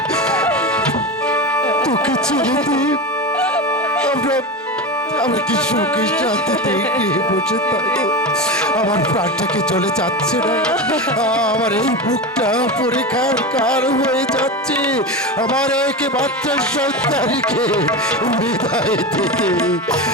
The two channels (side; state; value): both; normal; correlation 0.22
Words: তোকে ছেড়ে দিই আমরা কি সুখে শান্তিতে গৃহে বসে থাকবো? আমার প্রাণটাকে চলে যাচ্ছে না, আমার এই বুকটা পরীক্ষার কার হয়ে যাচ্ছে। আমার একমাত্র সন্তানকে বিদায় দিতে